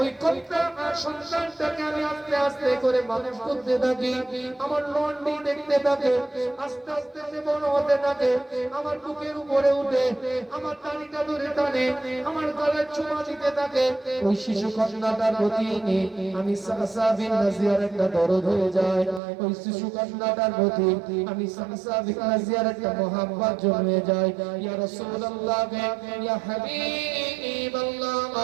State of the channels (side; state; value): left; drops out; at 19.2 s